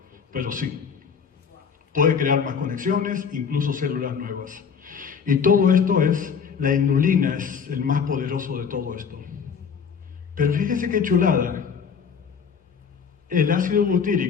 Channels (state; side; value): quieter; right; 6.5 dB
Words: pero sí. Puede crear más conexiones, incluso células nuevas. Y todo esto la inulina es el más poderoso de todo esto. Pero fíjense qué chulada. El ácido